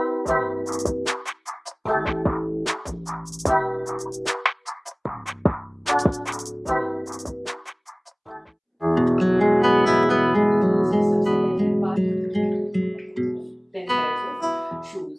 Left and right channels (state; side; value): identical; both; correlation 1.00